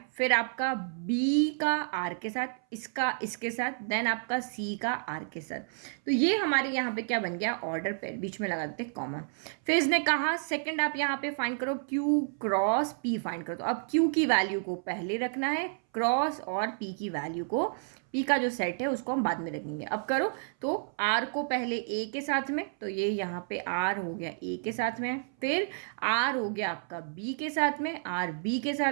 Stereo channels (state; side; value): silent; left; 57 dB below the other